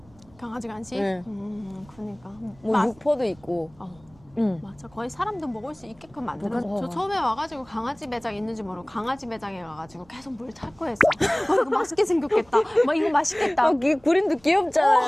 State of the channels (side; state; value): right; noise; rumble, 27 dB below the sound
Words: 강아지 간식? 네. 그러니까 뭐 육포도 있고. 맞아. 거의 사람도 먹을 수 있게끔 만들어. 어. 저 처음에 와가지고 강아지 매장 있는지 모르고 강아지 매장에 가가지고 계속 물 찾고 했어. 이거 맛있게 생겼겠다. 막 이거 맛있겠다. 그림도